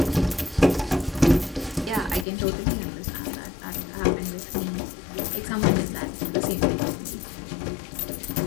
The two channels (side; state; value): right; drops out; at 2.2 s